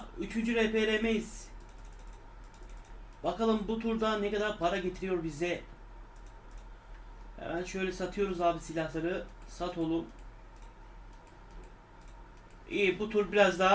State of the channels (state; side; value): identical; both; correlation 1.00